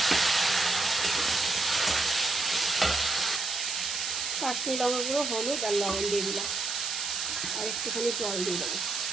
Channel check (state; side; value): noise; right; hiss, 2 dB below the sound